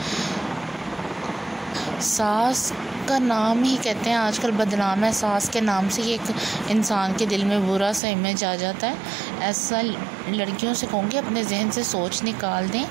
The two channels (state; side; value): drops out; left; at 8.0 s